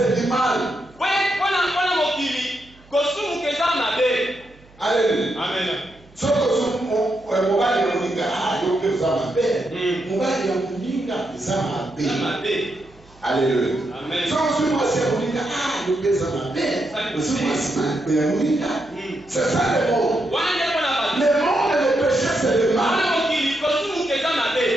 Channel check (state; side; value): noise; right; hum, 27 dB below the sound